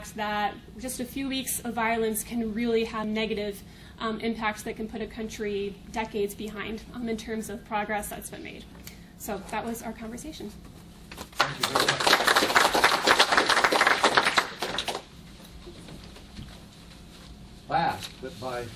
that just a few weeks of violence can really have negative impacts that can put a country decades behind in terms of progress that's been made. So that was our conversation. Last, but by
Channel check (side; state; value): both; identical; correlation 1.00